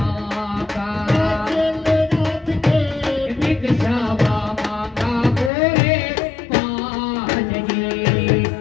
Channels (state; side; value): drops out; right; at 5.5 s